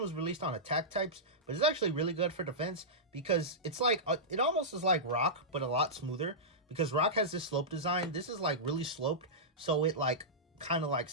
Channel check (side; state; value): both; normal; correlation -0.13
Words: released on attack types, but it's actually really good for defense because it's like it almost is like Rock, but a lot smoother. Because Rock has this slope design, this is like really sloped, so it like kind of like